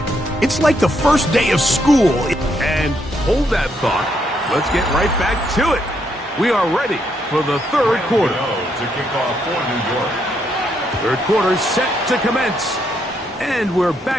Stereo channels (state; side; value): normal; both; correlation 0.76